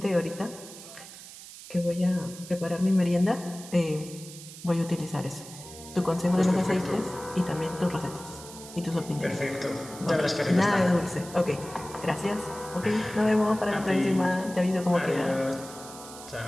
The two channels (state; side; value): noise; right; hiss, 15 dB below the sound